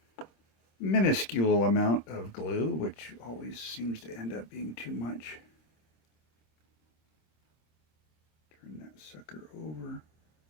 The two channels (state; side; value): late; right; 26 ms